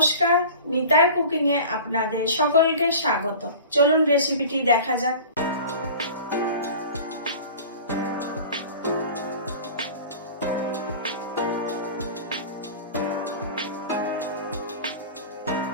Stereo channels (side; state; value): both; inverted; correlation -0.39